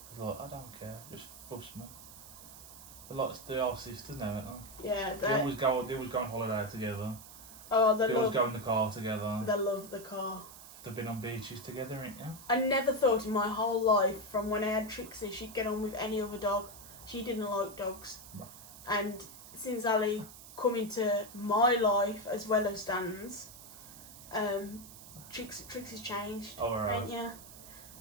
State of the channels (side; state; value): right; noise; hiss, 16 dB below the sound